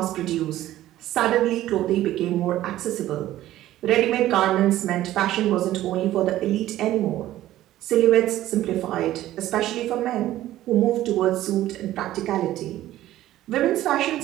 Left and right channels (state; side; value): quieter; left; 14.3 dB